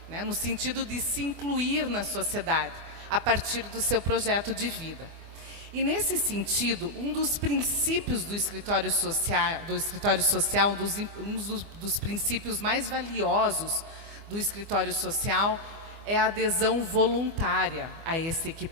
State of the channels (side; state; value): left; late; 24 ms